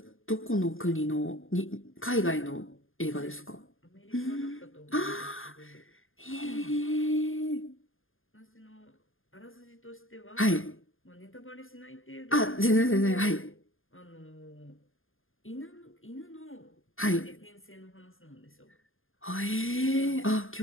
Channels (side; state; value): right; late; 0.59 ms